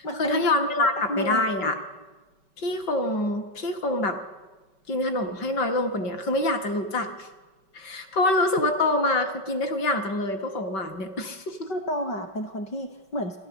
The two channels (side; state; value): right; late; 5.3 ms